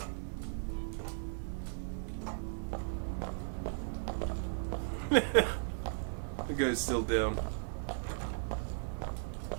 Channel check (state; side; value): silent; left; digital silence